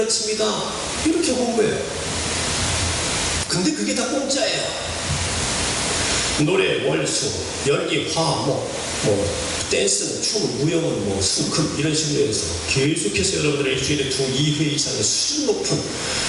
이렇게 홍보해요. 근데 그게 다 공짜예요. 노래, 월수, 연기, 화목, 댄스는, 춤은, 무용은, 수금 이런 식으로 해서 계속해서 여러분들의 일주일에 2회 이상의 수준 높은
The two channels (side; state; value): both; identical; correlation 1.00